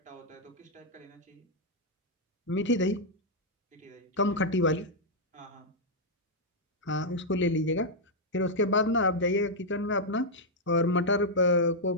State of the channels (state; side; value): normal; both; correlation -0.04